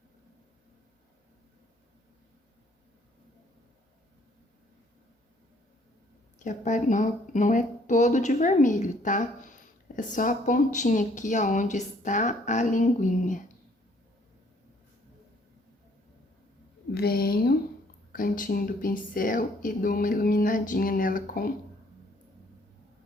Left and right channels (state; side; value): normal; both; correlation 0.62